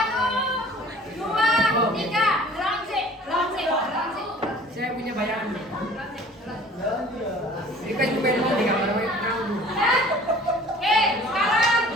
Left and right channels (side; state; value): both; normal; correlation 0.48